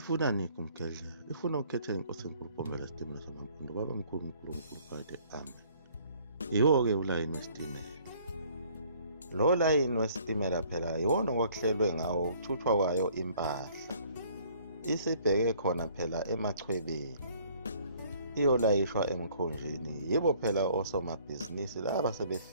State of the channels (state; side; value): inverted; both; correlation -0.59